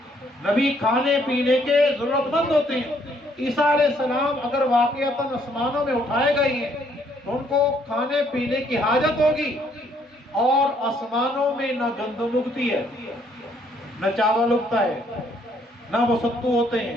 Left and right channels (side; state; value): both; normal; correlation 0.67